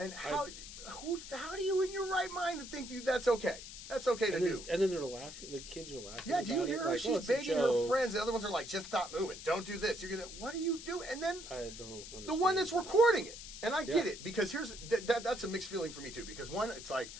how do you in your right mind to think, dude, that's okay? That's okay to do. And then they're laughing. The kids are laughing. Yeah, do you about hear it. her? Like, She's it's a begging her joke. friends. The other ones are like, just stop moving. Don't do this. You're gonna. What are you doing? And then I don't understand. the one that's that. recording it. And I get Yeah. it, because here's that's a mixed feeling for me too. Because one, it's like,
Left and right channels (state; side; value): noise; left; hiss, 12 dB below the sound